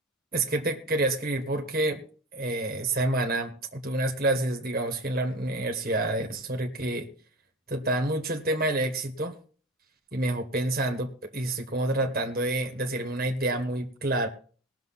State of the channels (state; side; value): normal; both; correlation 0.32